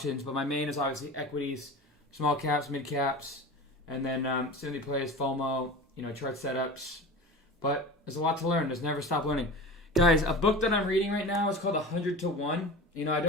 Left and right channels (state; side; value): normal; both; correlation 0.33